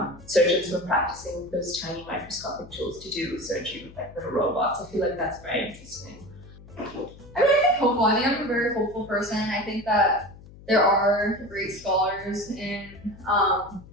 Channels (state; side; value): noise; left; hum, 19 dB below the sound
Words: surgeons who are practicing with those tiny microscopic tools to do surgery with like little robots, I feel like that's very interesting. I mean, I think hopeful. I think I'm a very hopeful person. I think that there are great scholars in